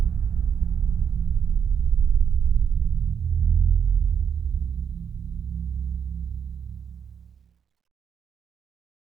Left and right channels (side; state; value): left; quieter; 7.4 dB